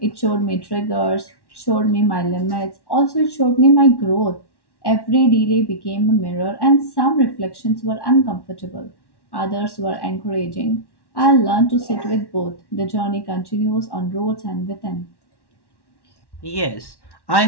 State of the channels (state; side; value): late; right; 1.1 ms